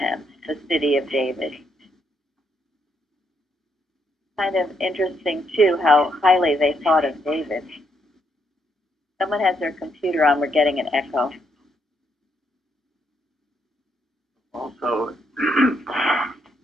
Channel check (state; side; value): normal; both; correlation 0.76